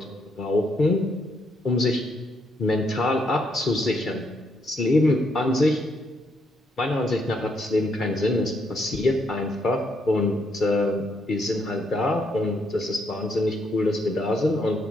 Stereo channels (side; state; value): both; normal; correlation 0.75